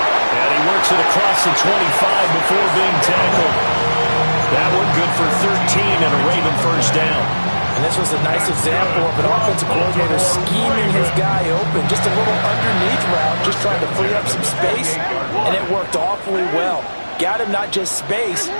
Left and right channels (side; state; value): both; inverted; correlation -1.00